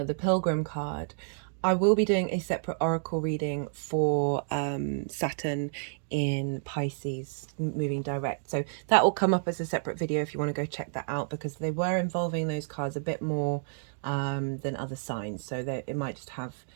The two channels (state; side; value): silent; left; digital silence